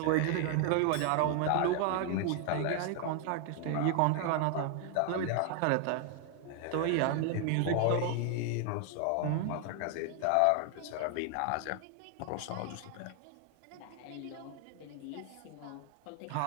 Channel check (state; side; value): different; both; correlation 0.00